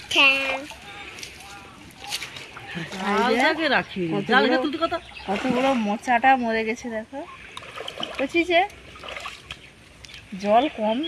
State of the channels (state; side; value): identical; both; correlation 1.00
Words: কতগুলো মোচাটা মরে গেছে দেখো বুঝিছে জল কম